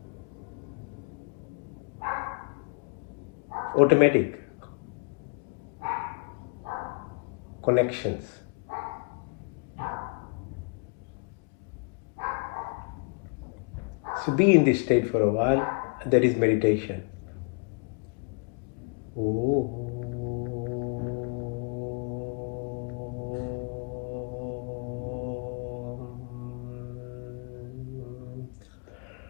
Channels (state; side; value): quieter; right; 35.1 dB